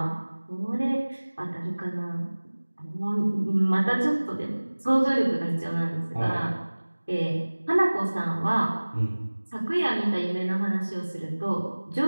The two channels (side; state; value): both; inverted; correlation -1.00